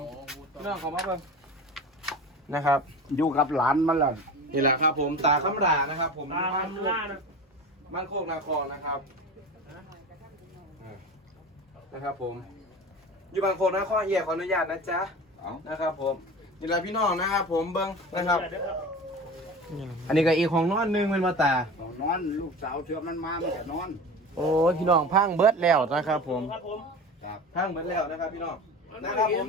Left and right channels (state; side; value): normal; both; correlation 0.33